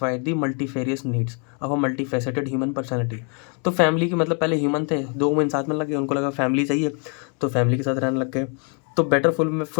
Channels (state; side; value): quieter; right; 38.3 dB